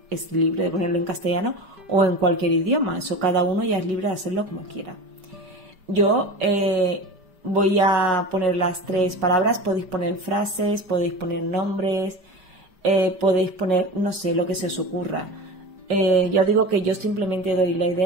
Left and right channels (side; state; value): left; late; 5.4 ms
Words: es libre de ponerlo en castellano o en cualquier idioma. Eso cada uno ya es libre de hacerlo como quiera. Yo voy a poner las tres palabras, podéis poner frases, podéis poner nombres, podéis poner, no sé, lo que se os ocurra. Ya digo que yo simplemente doy la